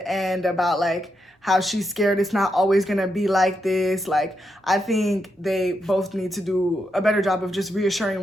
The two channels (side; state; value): both; normal; correlation 0.83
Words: end about like how she's scared it's not always going to be like this. Like, I think they both need to do a better job of just